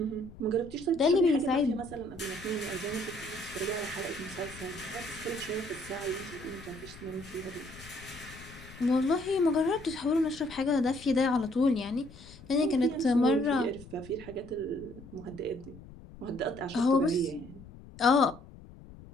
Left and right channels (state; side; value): noise; left; rumble, 18 dB below the sound